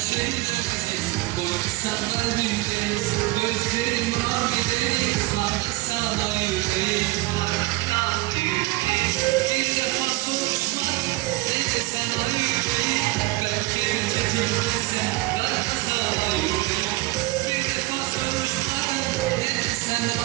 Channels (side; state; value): left; quieter; 20.6 dB